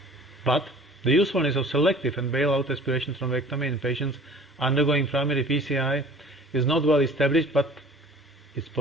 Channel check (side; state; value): both; normal; correlation 0.47